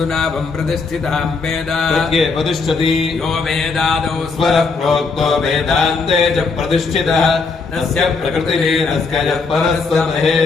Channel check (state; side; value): quieter; right; 4.4 dB